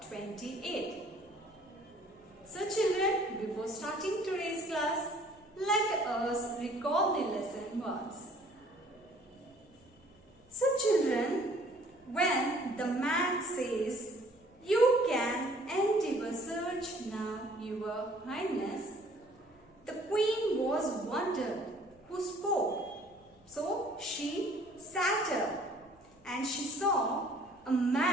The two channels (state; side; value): noise; left; hum, 29 dB below the sound